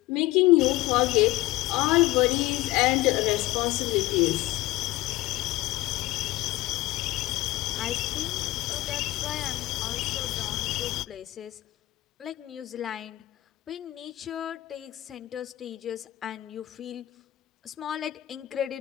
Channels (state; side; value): quieter; right; 17.7 dB